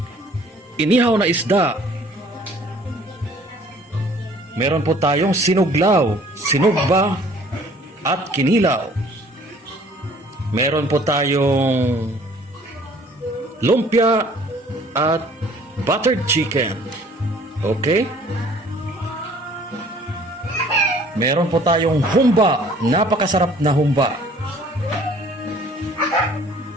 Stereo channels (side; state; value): both; normal; correlation 0.54